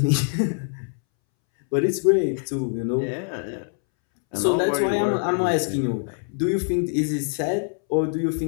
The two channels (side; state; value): right; silent; 63 dB below the other